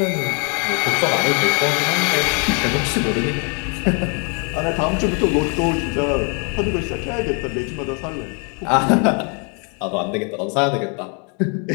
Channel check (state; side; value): quieter; right; 37.3 dB